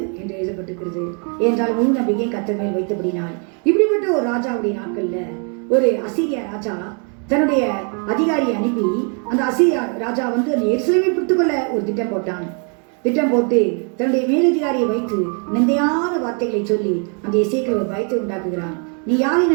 என்று எழுதப்பட்டிருக்கிறது. ஏனென்றால் முழு நம்பிக்கை கர்த்தர் மேல் வைத்தபடினால். இப்படிப்பட்ட ஒரு ராஜாவுடைய நாட்கள்ல ஒரு அசீரியா ராஜா தன்னுடைய அதிகாரியை அனுப்பி அந்த அசீரியா ராஜா வந்து அந்த எருசலேமை பிடித்துக்கொள்ள ஒரு திட்டம் போட்டான். திட்டம் போட்டு தன்னுடைய மேலதிகாரியை வைத்து நிந்தையான வார்த்தைகளை சொல்லி அந்த எசேக்கியேல் ஒரு பயத்தை உண்டாக்குகிறான். நீ யாரை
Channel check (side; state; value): left; quieter; 38.9 dB